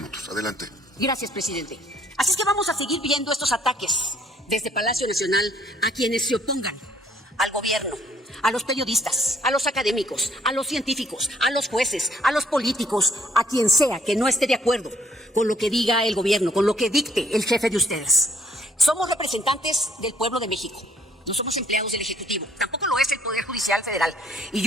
Adelante. Gracias, presidente. Así es que vamos a seguir viendo estos ataques desde Palacio Nacional a quienes se opongan al gobierno, a los periodistas, a los académicos, a los científicos, a los jueces, a los políticos, a quien sea que no esté de acuerdo con lo que diga el gobierno, con lo que dicte el jefe de ustedes. Somos representantes del pueblo de México. No somos empleados del Ejecutivo. Tampoco lo es el Poder Judicial Federal. Y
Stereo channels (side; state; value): both; normal; correlation 0.64